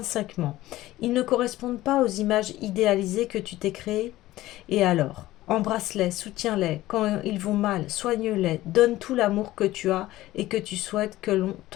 Ils ne correspondent pas aux images idéalisées que tu t'es créées. Et alors, embrasse-les, soutiens-les, quand ils vont mal, soigne-les, donne tout l'amour que tu as et que tu souhaites que l'on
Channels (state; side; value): quieter; right; 16.3 dB